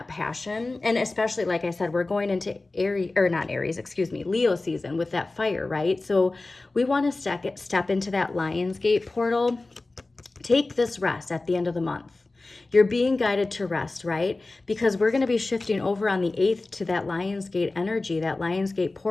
passion. And especially, like I said, we're going into Leo season with that fire, right? So we want to step into that Lionsgate portal. Take this rest at the end of the month. You're being guided to rest, right? Because we're going to be shifting over on the 8th to that Lionsgate energy, that Lionsgate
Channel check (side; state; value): right; quieter; 3.2 dB